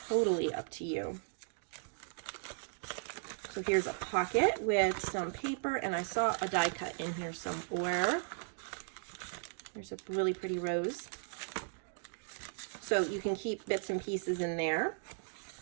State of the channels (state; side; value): silent; left; digital silence